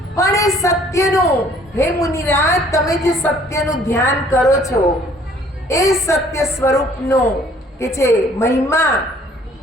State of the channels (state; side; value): normal; both; correlation 0.58